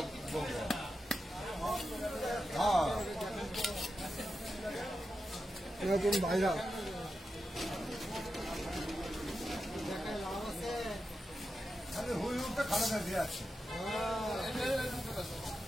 হ্যাঁ নতুন ভাইরা আরে হুই উঠে খানা দিয়ে আছে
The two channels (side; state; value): both; normal; correlation 0.89